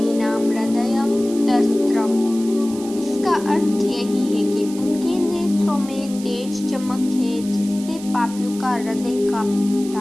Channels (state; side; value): noise; right; hiss, 16 dB below the sound